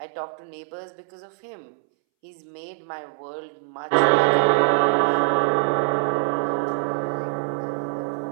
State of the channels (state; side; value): silent; left; 63 dB below the other